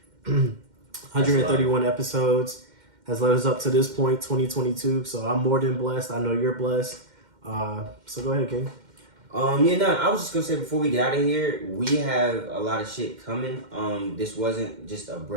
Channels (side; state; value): left; late; 2.1 ms